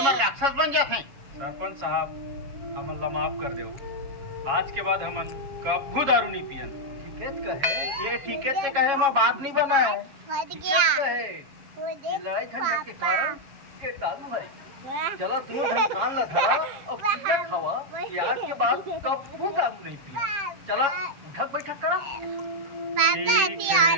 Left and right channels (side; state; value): left; late; 7.3 ms